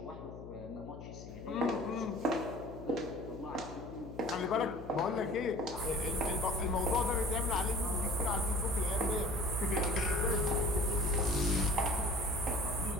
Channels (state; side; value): noise; left; hum, 12 dB below the sound